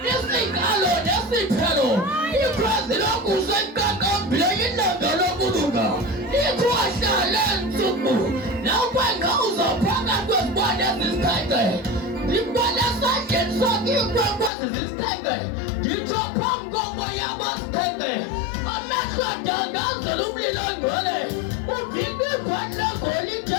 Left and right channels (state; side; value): drops out; right; at 14.5 s